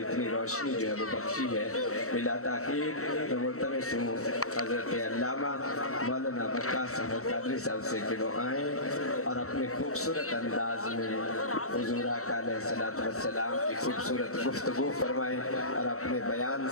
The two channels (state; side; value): late; right; 0.64 ms